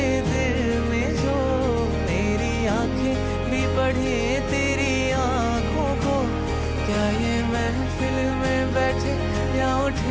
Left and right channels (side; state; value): both; identical; correlation 1.00